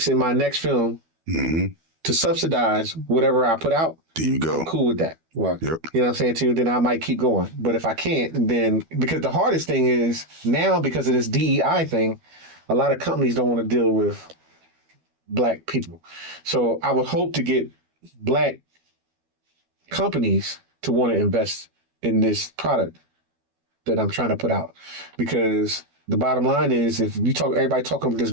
in my next film Mm-hmm. to subsidize whatever I put out, There you go. I'm cool with that. Right. Yep. You know what I'm saying to you? Then I might keep going. But if I can't, then because the hardest thing is now because of this DEI thing, a lot of companies don't want to deal with Black people. So I would hope to get Black companies to want to invest in this product that I'm trying to put out. Because the bottom line is if you talk, everybody talking about this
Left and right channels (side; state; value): left; late; 12 ms